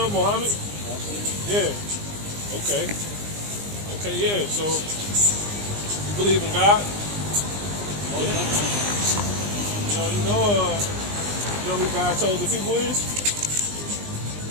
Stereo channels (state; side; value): late; left; 20 ms